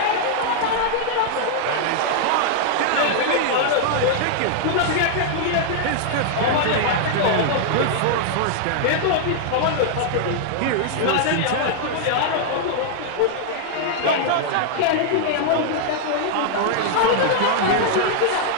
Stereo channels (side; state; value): both; different; correlation -0.01